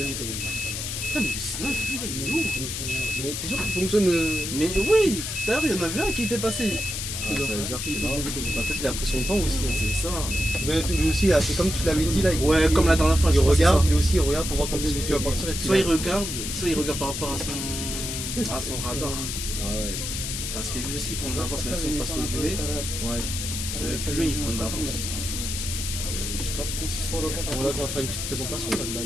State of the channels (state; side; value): noise; left; hiss, 4 dB below the sound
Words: Putain, mais le 609, lui, là, il est où? Mais t'es sûr qu'il fonctionne Mais oui, tout à l'heure, il y en avait un qui était passé. ça veut dire qu'il est là. Peut-être qu'il a pris son temps aussi. Hein. C'est ça. Mais lui aussi, c'est comme tu l'avais dit là. Ouais, comme la dernière fois, il je crois que c'est regarde, ça. lui aussi il regarde pour voir quand est-ce que tu vas partir. Et puis, Soit il regarde par rapport à son radar. Ah ouais. Parce que lui aussi, il prend de l'avance, même si on passe au UV. Ouais. Plus lui, il prend de l'avance. Je sais pas pourquoi si c'est. Bon, là, on va faire une petite présentation là, de la